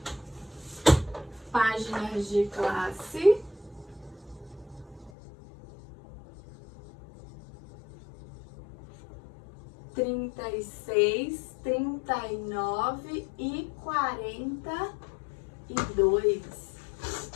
Páginas de classe. Trinta e 39 e 42.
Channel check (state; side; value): drops out; right; at 5.1 s